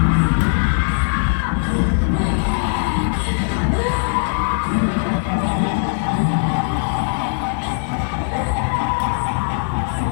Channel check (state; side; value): silent; right; digital silence